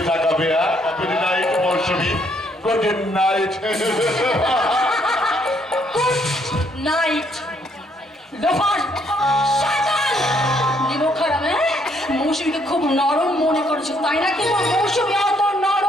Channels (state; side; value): normal; both; correlation 0.69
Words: তাকাবে। গুড নাইট মৌসুমী, গুড নাইট। নাইট লোফার শয়তান নিমক খারাপ। মৌসুমীকে খুব নরম মনে করেছে, তাই না? কিন্তু মৌসুমী অত